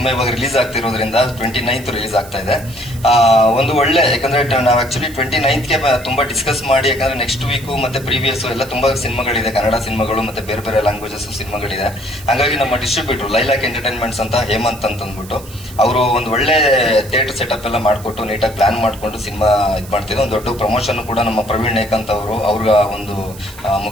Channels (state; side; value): noise; right; hiss, 18 dB below the sound